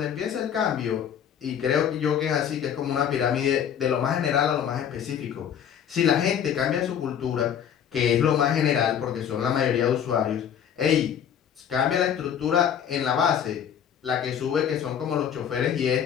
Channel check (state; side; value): quieter; right; 8.8 dB